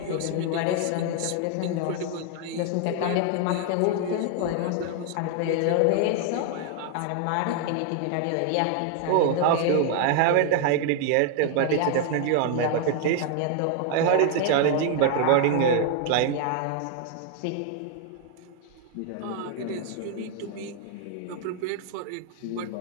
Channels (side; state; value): both; different; correlation 0.00